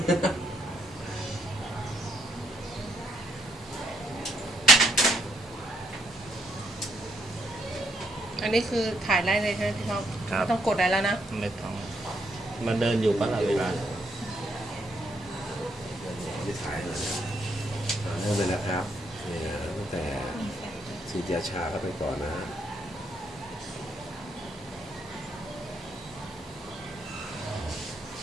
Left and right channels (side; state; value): both; normal; correlation 0.73